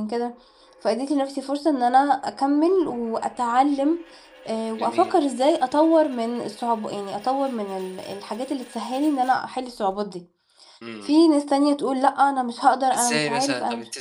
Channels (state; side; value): identical; both; correlation 1.00